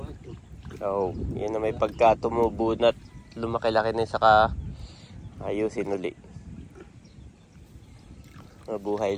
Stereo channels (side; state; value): both; identical; correlation 1.00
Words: So, yan na may pagka tumubo na lumaki-laki na saka ayusin uli.